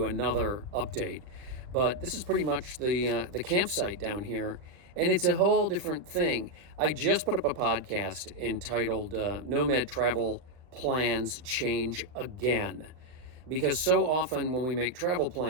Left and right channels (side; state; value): left; late; 39 ms